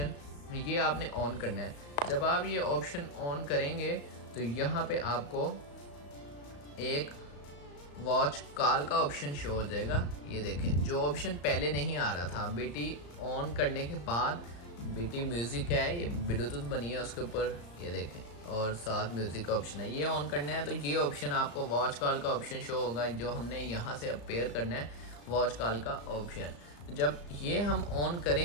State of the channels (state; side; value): late; right; 35 ms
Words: ये आपने ऑन करना है। जब आप ये ऑप्शन ऑन करेंगे तो यहाँ पे आपको एक वॉच कॉल का ऑप्शन शो हो जाएगा। ये देखें, जो ऑप्शन पहले नहीं आ रहा था, बीटी ऑन करने के बाद बीटी म्यूज़िक है, ये ब्लूटूथ बनी है उसके ऊपर, ये देखें, और साथ म्यूज़िक का ऑप्शन है, ये ऑन करना है। तो ये ऑप्शन आपको वॉच कॉल का ऑप्शन शो होगा, जो हमने यहाँ से अब पेयर करना है वॉच कॉल का ऑप्शन। जब ये हम ऑन